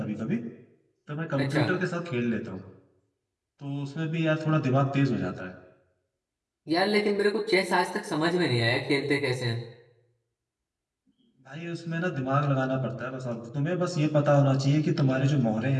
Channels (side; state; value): both; identical; correlation 1.00